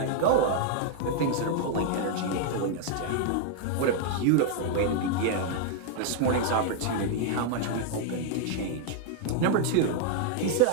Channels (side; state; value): both; different; correlation 0.00